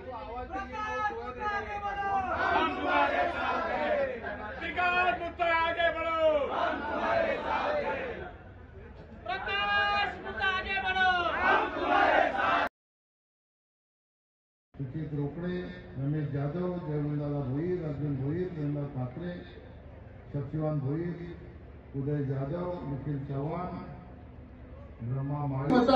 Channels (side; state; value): both; identical; correlation 1.00